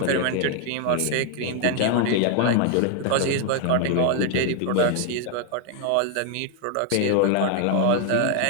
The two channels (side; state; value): both; different; correlation 0.00